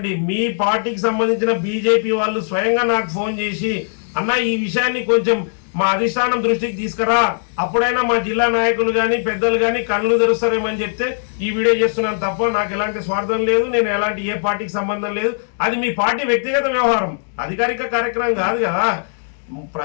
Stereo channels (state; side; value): silent; right; digital silence